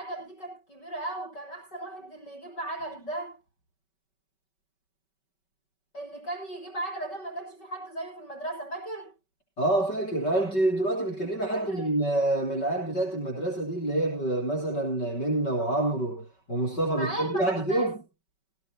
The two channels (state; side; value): late; right; 5.2 ms